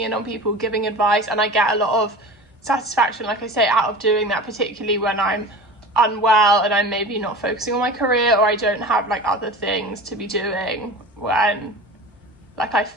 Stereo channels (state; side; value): normal; both; correlation 0.35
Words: in on people, giving advice, and I get a lot of satisfaction, like I say, out of doing that, particularly when I'm unwell and I'm maybe not focusing on my career, or I don't have like other things to be doing, when like I